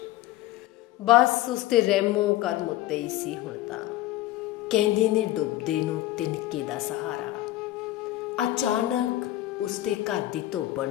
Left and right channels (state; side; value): quieter; right; 15.5 dB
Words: ਬਸ ਉਸ ਤੇ ਰਹਿਮੋ ਕਰਮ ਉੱਤੇ ਹੀ ਸੀ ਹੁਣ ਤਾਂ। ਕਹਿੰਦੇ ਨੇ ਡੁੱਬਦੇ ਨੂੰ ਤਿਨਕੇ ਦਾ ਸਹਾਰਾ। ਅਚਾਨਕ ਉਸਦੇ ਘਰ ਦੀ ਧੋਬਣ